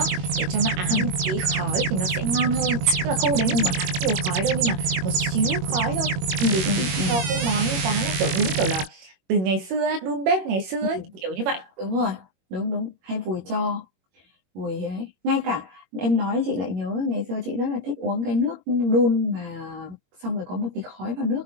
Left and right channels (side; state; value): left; late; 21 ms